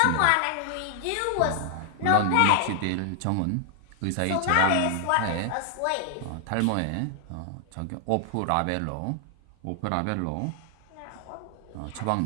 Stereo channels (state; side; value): different; both; correlation 0.00